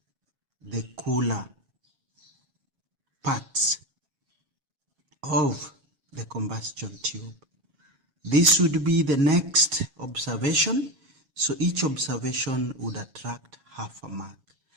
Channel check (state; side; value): late; left; 7.3 ms